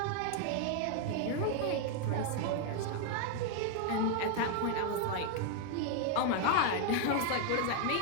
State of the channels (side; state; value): both; different; correlation 0.00